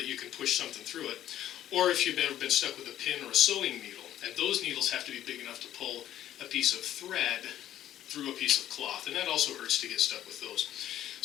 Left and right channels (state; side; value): quieter; right; 12.1 dB